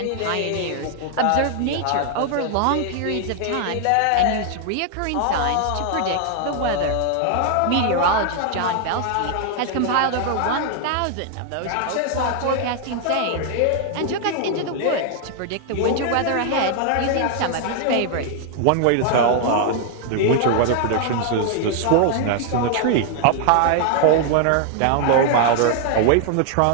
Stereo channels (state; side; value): different; both; correlation 0.00